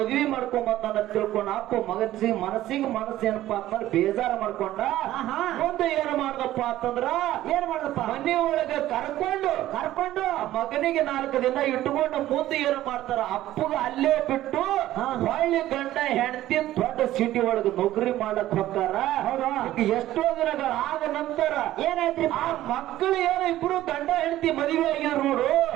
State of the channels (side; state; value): left; quieter; 14.3 dB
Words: ಮಾಡ್ಕೊಂಬಂದ ತಿಳ್ಕೊಂಡ ಅಪ್ಪ ಮನಸ್ಸಿಗೆ ಮನಸ್ಸು ಏನಪ್ಪಾ ಅಂತಂದ್ರೆ ಬೇಜಾರ ಮಾಡ್ಕೊಂಡ. ಮುಂದೆ ಏನ್ ಮಾಡ್ದಪ್ಪ ಅಂತಂದ್ರ ಏನ್ ಮಾಡದಪ್ಪ? ಮನೆ ಒಳಗೆ ಕರ್ಕೊಂಡು ಮಗನಿಗೆ 4 ದಿನ ಇಟ್ಕೊಂಡು ಮುಂದೆ ಏನ್ ಮಾಡ್ತಾರ? ಅಪ್ಪಗ ಅಲ್ಲೇ ಬಿಟ್ಟು ಹೊಳ್ಳಿ ಗಂಡ ಹೆಂಡತಿ ದೊಡ್ಡ ಸಿಟಿ ಒಳಗೆ ನೌಕರಿ ಮಾಡಕ್ ಹೋಗ್ತಾರ. ಎಷ್ಟೋ ದಿನಗಳ ಆದ ನಂತರ ಏನಾಯ್ತ್ರಿ? ಆ ಮಕ್ಕಳು ಏನೋ ಇಬ್ರು ಗಂಡ ಹೆಂಡತಿ ಮದುವೆ ಆಗಿದ್ರು ನೋಡು.